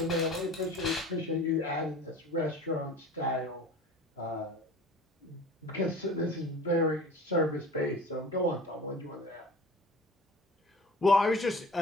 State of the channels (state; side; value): normal; both; correlation 0.41